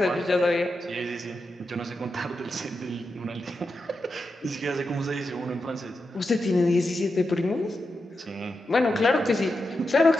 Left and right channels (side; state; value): both; normal; correlation 0.88